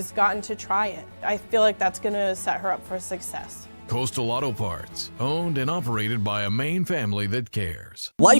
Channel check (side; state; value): both; inverted; correlation -1.00